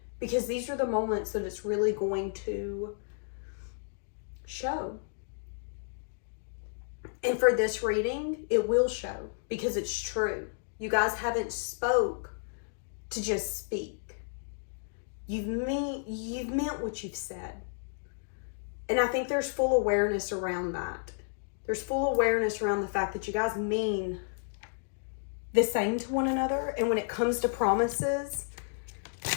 Because these are the moments that it's really going to show. And for this reading, it will show because it's true. You guys haven't spoke to just speak. You've meant what you've said. And I think there's full awareness around that. There's full awareness around the fact that you guys mean the same to one another. And when it comes to promises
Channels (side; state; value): right; silent; digital silence